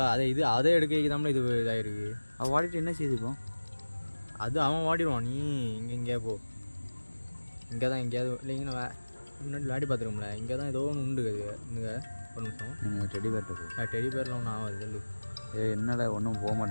அதே எடுக்க இது இதாகிருக்கு. அவள் வாடிட்டு என்ன செய்துப்போம்? அது அவன் வாடிடுவான். நீ இங்கே போ, இங்கே தான் எங்கேயாவது இல்லைங்கன்னா முன்னாடி விளையாடி பார்த்துருக்கோம்ல, இங்கே தான் ஏதோ ஒன்று உண்டு. அது இங்கே ஒரு நிமிஷம், டெடி பேர்ட்ட போ. டெடி பேரில் ஒன்றும் ஆகாது சொல்லு. என்னடா ஒன்றும் போக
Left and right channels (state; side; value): inverted; both; correlation -1.00